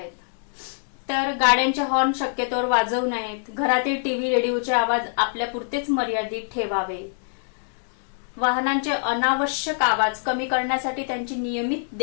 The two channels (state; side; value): silent; right; digital silence